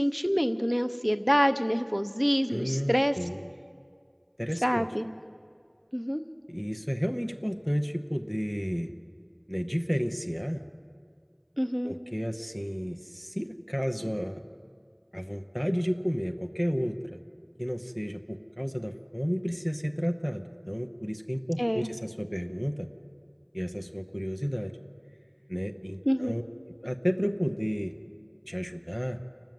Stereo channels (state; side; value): identical; both; correlation 1.00